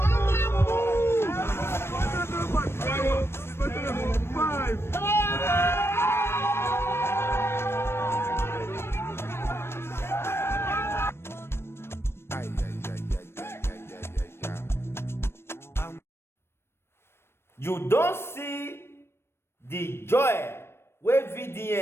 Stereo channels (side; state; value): right; late; 0.12 ms